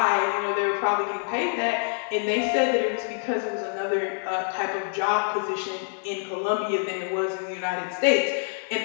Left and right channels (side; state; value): right; silent; digital silence